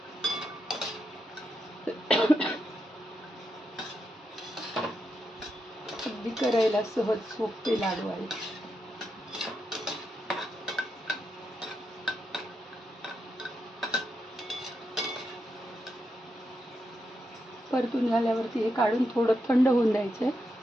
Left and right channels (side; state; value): both; normal; correlation 0.84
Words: अगदी करायला सहज सोपे लाडू आहेत. परतून झाल्यावरती हे काढून थोडं थंड होऊन द्यायचं.